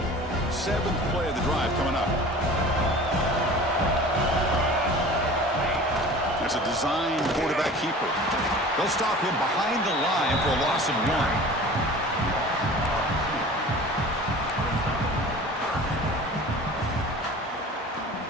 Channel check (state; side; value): normal; both; correlation 0.41